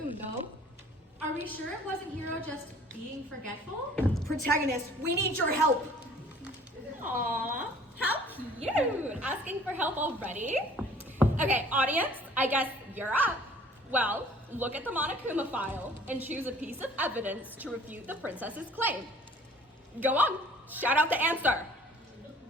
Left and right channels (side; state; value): both; normal; correlation 0.52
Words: though. Are we sure it wasn't Hero just being forgetful? Protagonist, we need your help. Aww, how cute! Asking for help already? Okay, audience, I guess you're up. Well, look at the Monokuma File and choose a piece of evidence to refute the princess's claim. Go on, shout out the answer.